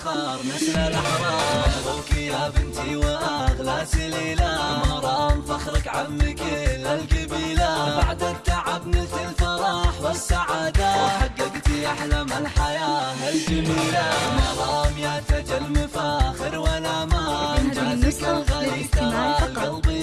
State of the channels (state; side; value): identical; both; correlation 1.00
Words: نسل الأحرار. مبروك يا بنتي وأغلى سليلة مرام فخرك عم كل القبيلة. بعد التعب نلت الفرح والسعادة وحققتي أحلام الحياة الجميلة. مرام يا تاج المفاخر والأمان جازك الغالي ترى القلب